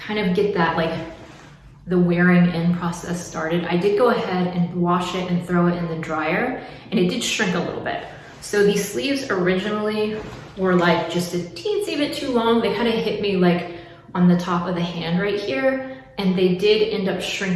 of get that like the wearing in process started, I did go ahead and wash it and throw it in the dryer, and it did shrink a little bit. So these sleeves originally were like just a teensy bit too long. They kind of hit me like on the top of the hand right here, and they did end up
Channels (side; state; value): both; identical; correlation 1.00